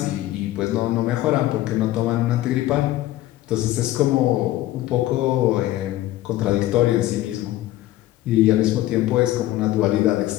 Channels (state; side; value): quieter; right; 15.3 dB